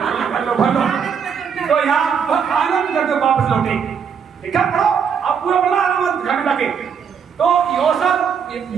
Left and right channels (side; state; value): left; quieter; 7.0 dB